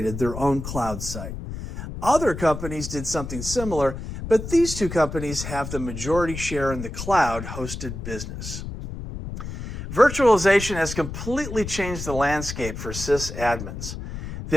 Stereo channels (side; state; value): left; noise; rumble, 8 dB below the sound